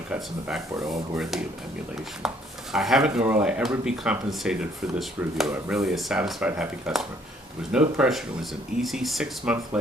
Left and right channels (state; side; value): normal; both; correlation 0.63